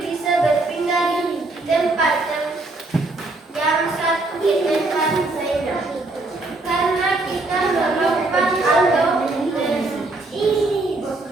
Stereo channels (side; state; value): left; quieter; 3.1 dB